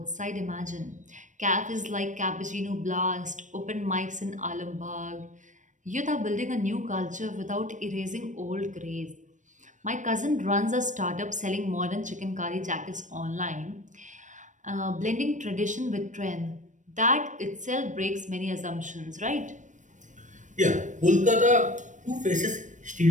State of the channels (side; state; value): left; late; 0.36 ms